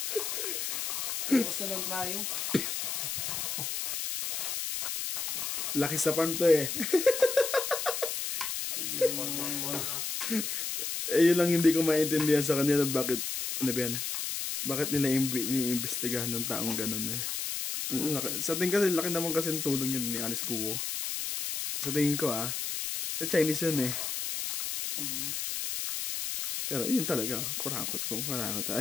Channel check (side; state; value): left; noise; hiss, 2 dB below the sound